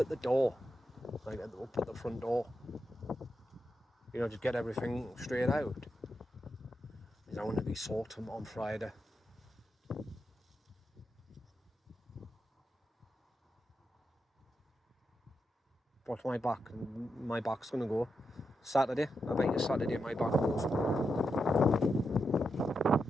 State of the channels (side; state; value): both; normal; correlation 0.86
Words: the door. Like up at the front door. You know, just get everything straight out. Because I want to be sorting on Friday. Watch my back. My back's going to go. Saturday. I bet you Saturday my back goes.